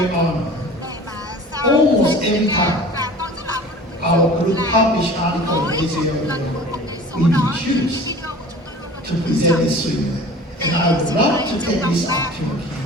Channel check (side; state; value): both; normal; correlation 0.42